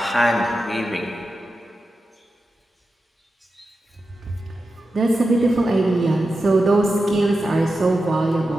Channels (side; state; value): both; normal; correlation 0.91